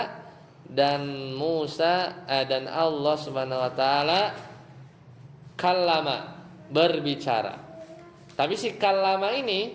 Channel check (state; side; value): identical; both; correlation 1.00